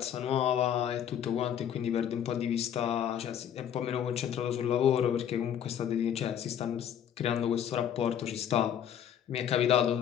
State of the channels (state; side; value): quieter; right; 9.4 dB